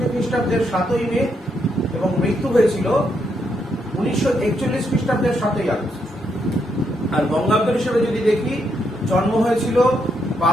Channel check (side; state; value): both; normal; correlation 0.78